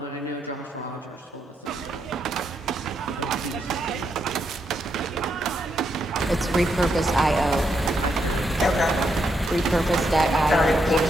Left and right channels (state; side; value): normal; both; correlation 0.79